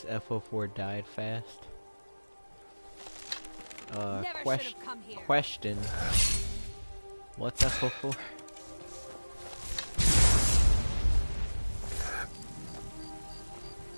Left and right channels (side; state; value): both; inverted; correlation -1.00